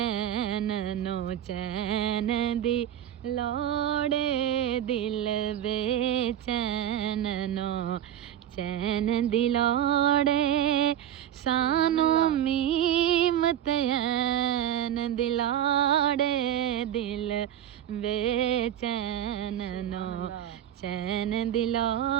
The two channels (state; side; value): quieter; left; 10.8 dB